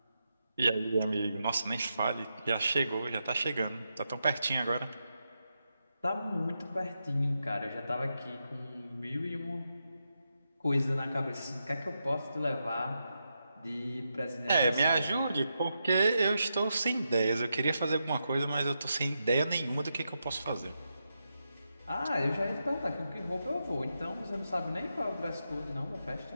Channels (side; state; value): both; inverted; correlation -0.86